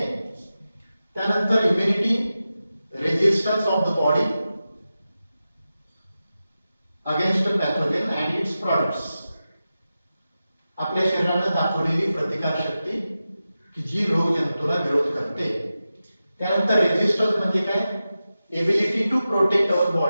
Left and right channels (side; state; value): both; inverted; correlation -0.93